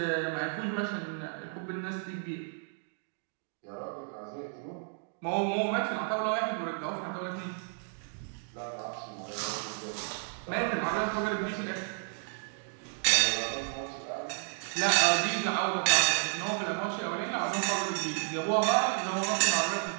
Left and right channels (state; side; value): silent; left; 56 dB below the other